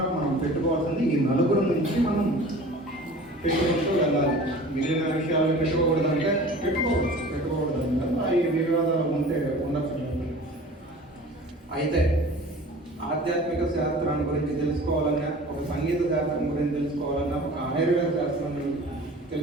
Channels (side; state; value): both; normal; correlation 0.42